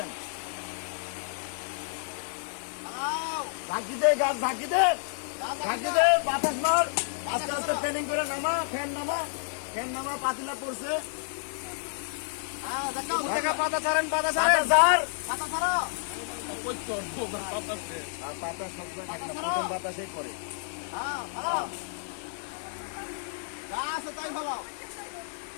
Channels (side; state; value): right; silent; digital silence